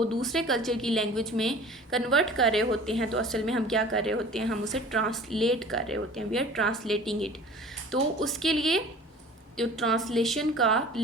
दूसरे कल्चर की लैंग्वेज में कन्वर्ट कर रहे होते हैं तो असल में हम क्या कर रहे होते हैं, हम उसे ट्रांसलेट कर रहे होते हैं, वी आर ट्रांसलेटिंग इट। तो उसके लिए जो ट्रांसलेशन का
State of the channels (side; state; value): both; normal; correlation 0.44